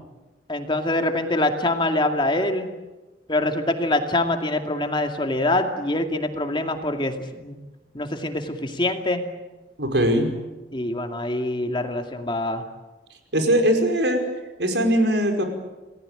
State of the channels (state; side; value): normal; both; correlation 0.31